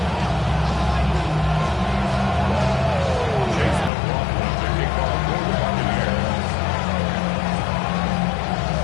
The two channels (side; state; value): right; drops out; at 3.9 s